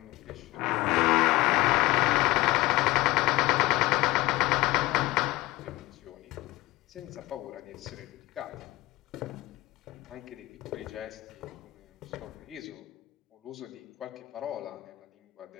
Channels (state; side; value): quieter; right; 19.6 dB